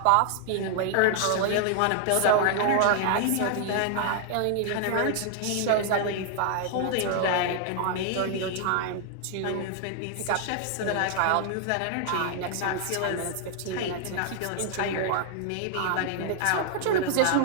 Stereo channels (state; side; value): different; both; correlation 0.00